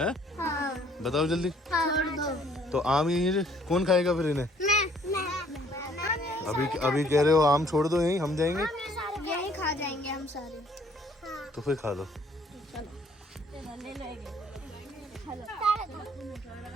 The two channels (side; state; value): both; normal; correlation 0.61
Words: बताओ जल्दी। छोड़ दो। तो आम यहीं कौन खाएगा फिर इन्हें? मैं अभी कह रहे हो आम छोड़ दो यहीं, हम जाएंगे। यही खा जाएंगे हम सारे। तो फिर खा लो।